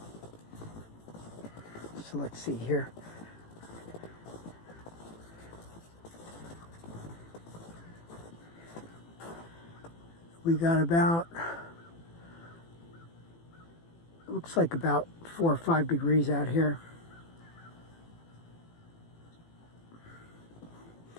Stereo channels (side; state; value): right; late; 18 ms